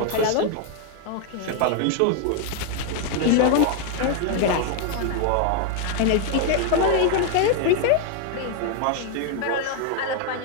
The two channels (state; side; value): different; both; correlation 0.00